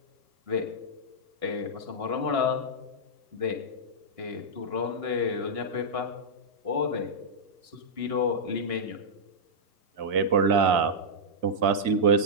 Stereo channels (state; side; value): late; left; 2.0 ms